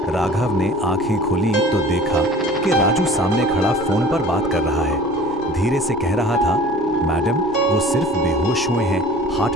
राघव ने आंखें खोली तो देखा कि राजू सामने खड़ा फोन पर बात कर रहा है। धीरे से कह रहा था, मैडम वो सिर्फ बेहोश हुए हैं, हार्ट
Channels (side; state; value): both; normal; correlation 0.45